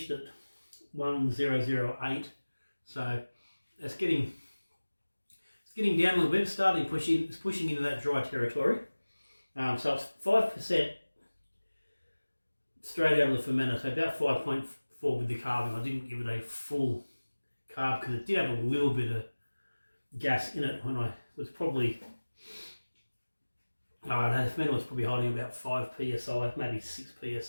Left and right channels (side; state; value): both; inverted; correlation -1.00